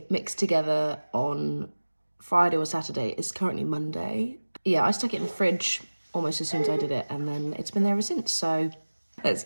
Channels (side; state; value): both; inverted; correlation -1.00